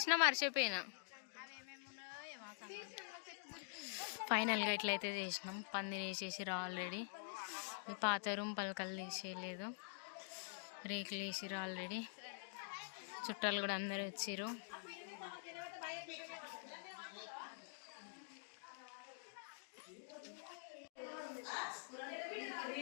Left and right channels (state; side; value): silent; right; digital silence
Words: మర్చిపోయినా. ఫైనల్గా ఇట్లయితే చేసినాం. పందిరి వేసేసిర్రు ఆల్రెడీ. ఈ పాత రూమ్ పలకలు తీసేయలేదు, రేకులు వేసిర్రు ఆల్రెడీ. చుట్టాలు కూడా అందరు వచ్చిర్రు.